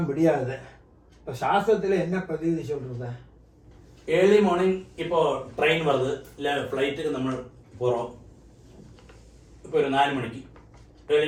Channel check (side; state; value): both; identical; correlation 1.00